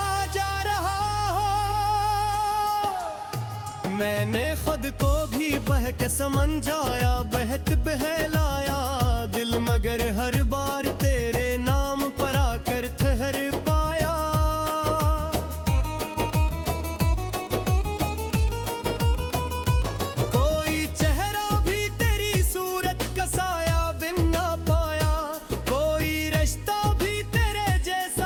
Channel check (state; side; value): identical; both; correlation 1.00